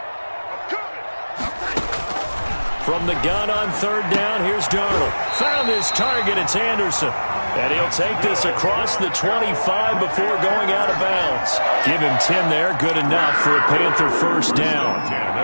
From the gun on 3rd down, here's Darnold. Found his target. It's Anderson. And he'll take this across the 25 before going out of bounds. Give him 10 there. Good enough for a Panther 1st down. 10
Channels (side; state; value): both; inverted; correlation -1.00